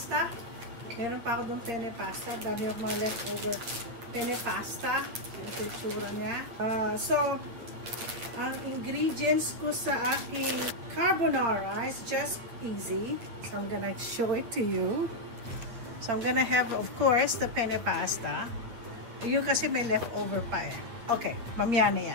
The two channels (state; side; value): late; left; 9.0 ms